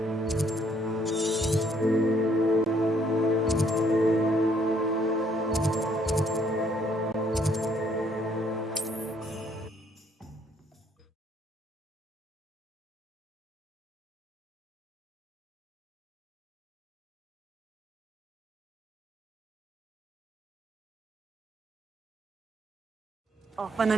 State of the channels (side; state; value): both; normal; correlation 0.66